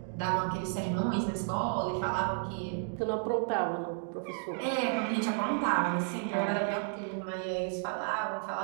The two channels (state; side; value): silent; left; 56 dB below the other